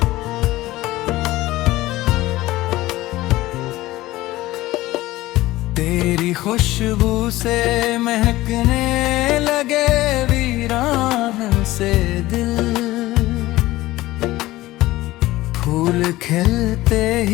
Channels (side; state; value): right; quieter; 17.5 dB